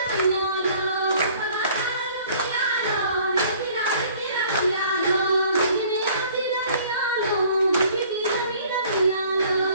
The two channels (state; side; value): inverted; both; correlation -0.54